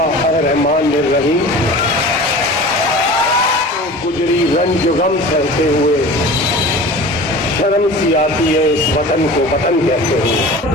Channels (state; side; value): normal; both; correlation 0.38